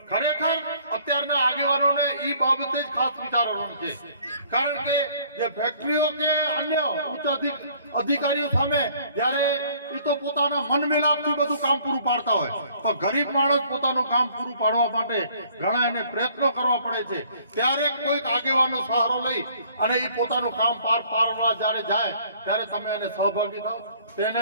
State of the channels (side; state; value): both; inverted; correlation -0.58